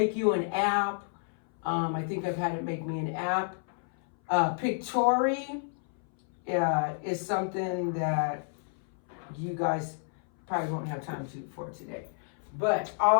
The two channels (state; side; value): silent; right; 58 dB below the other